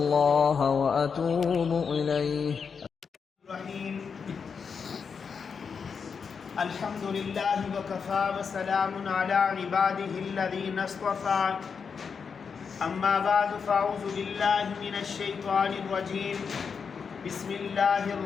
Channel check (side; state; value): right; quieter; 6.0 dB